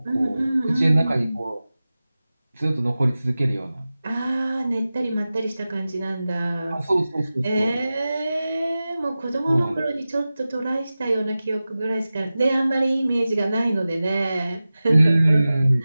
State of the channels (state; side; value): inverted; both; correlation -0.96